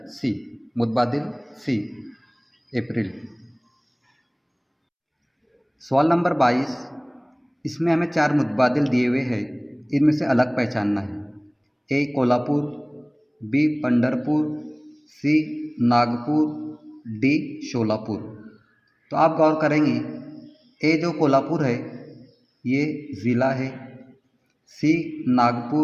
सी, मुतबादिल सी, अप्रैल। सवाल नंबर 22, इसमें हमें 4 मुतबादिल दिए हुए हैं, इनमें से अलग पहचानना है। ए कोल्हापुर, बी पंढरपुर, सी नागपुर, डी शोलापुर। तो आप गौर करेंगे ए जो कोल्हापुर है ये ज़िला है, सी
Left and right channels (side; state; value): both; identical; correlation 1.00